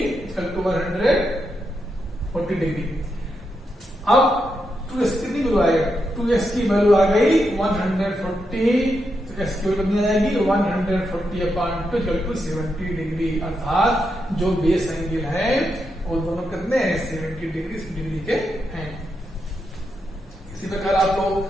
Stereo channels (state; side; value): normal; both; correlation 0.83